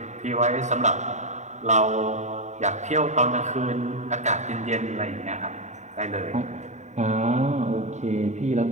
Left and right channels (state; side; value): late; left; 0.34 ms